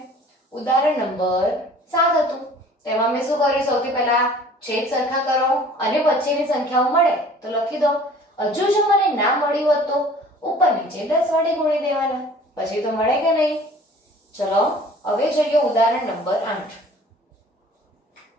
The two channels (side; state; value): both; normal; correlation 0.49